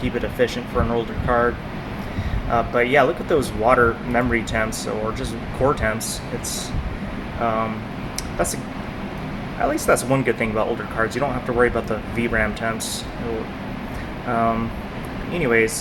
it efficient for an older card. But yeah, look at those water memory temps or just core temps. It's at least that's one good thing about older cards. You don't have to worry about the VRAM temps.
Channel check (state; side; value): identical; both; correlation 1.00